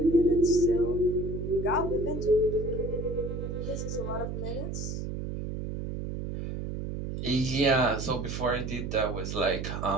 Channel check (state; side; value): noise; right; hum, 5 dB below the sound